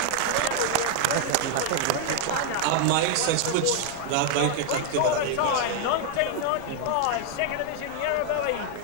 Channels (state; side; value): different; both; correlation 0.00